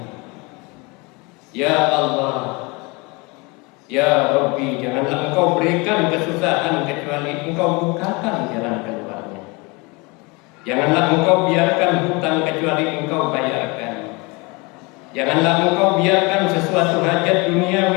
Janganlah engkau berikan kesusahan kecuali engkau bukakan jalan keluarnya. Janganlah engkau biarkan hutang kecuali engkau bayarkan. Janganlah engkau biarkan sesuatu hajat duniawi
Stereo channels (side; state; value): right; quieter; 27.3 dB